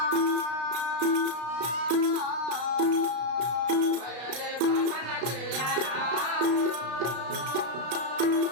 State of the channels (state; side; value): late; left; 33 ms